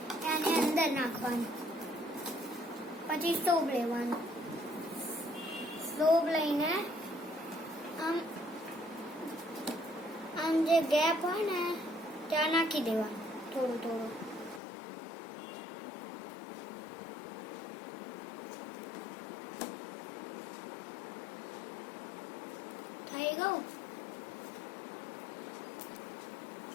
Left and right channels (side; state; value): right; drops out; at 14.6 s